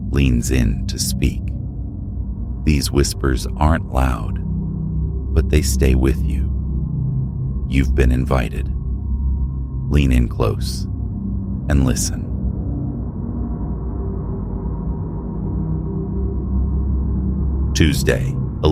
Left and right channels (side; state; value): both; identical; correlation 1.00